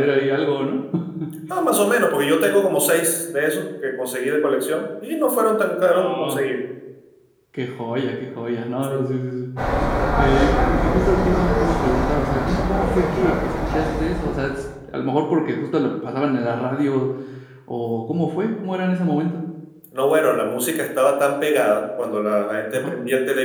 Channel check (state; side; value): identical; both; correlation 1.00